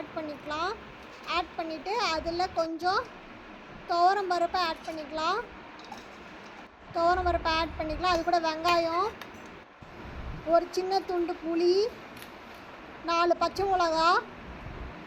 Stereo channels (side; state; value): both; identical; correlation 1.00